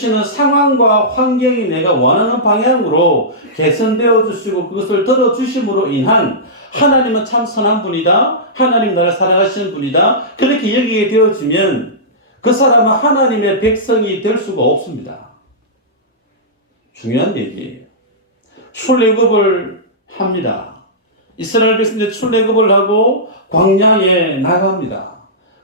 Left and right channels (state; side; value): normal; both; correlation -0.16